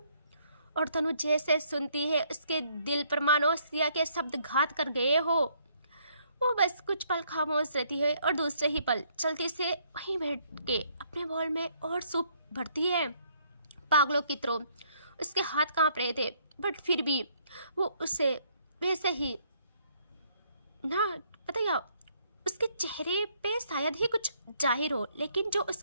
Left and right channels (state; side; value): inverted; both; correlation -0.68